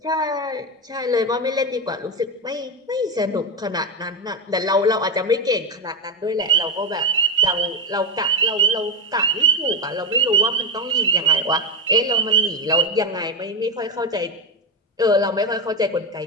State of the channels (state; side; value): normal; both; correlation 0.11